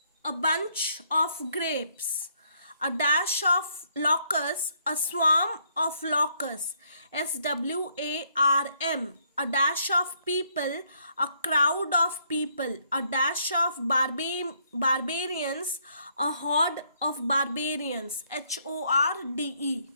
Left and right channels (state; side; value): inverted; both; correlation -0.70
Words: a bunch of grapes. A dash of locusts, a swarm of locusts. SWARM. A dash of people, a crowd of people. A dash of barbarians, a horde of barbarians. HORDE.